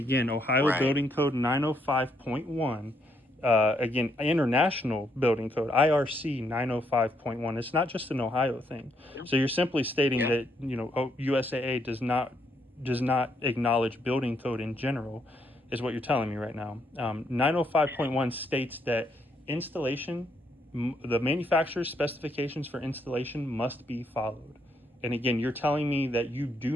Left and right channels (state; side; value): normal; both; correlation 0.74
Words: Ohio right. Building Code 905.1, again, International Building Code, IRC 905.1. It's not just an Ohio thing. So you're simply stating Yeah. that, USAA does not acknowledge building code in general, is what you're telling me right now. 905.1 states that installation, the manufacturer's specifications for installation must be followed. And again, you're telling me that you